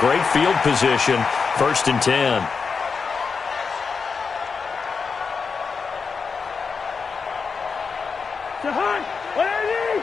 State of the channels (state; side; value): quieter; right; 5.3 dB